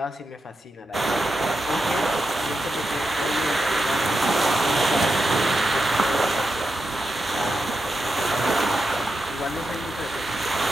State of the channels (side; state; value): both; normal; correlation 0.87